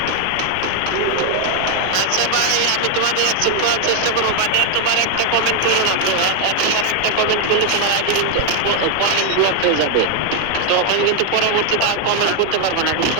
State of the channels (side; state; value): both; different; correlation 0.01